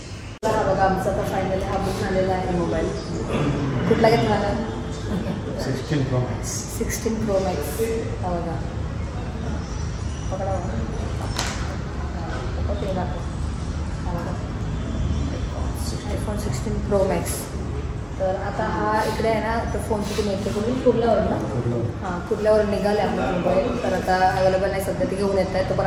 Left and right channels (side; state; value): both; identical; correlation 1.00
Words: आमचा आता फायनली हा बुक झालेला आहे मोबाईल. कुठला घेतला? 16 Pro Max. 16 Pro Max. हा बघा, पकडा iPhone 16 Pro Max. तर आता हा इकडे आहे ना, तर फोनची तुम्ही येते करून कुठल्यावर ना हां कुठल्यावर निघाले आपला मोबाईल. तर आता अवेलेबल नाही सध्या, ते घेऊन येत आहे. तो पण